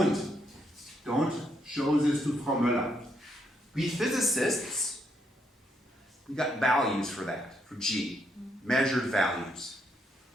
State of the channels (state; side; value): normal; both; correlation 0.76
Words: don't show this to Frau Müller. We physicists, we got values for that, for G, measured values.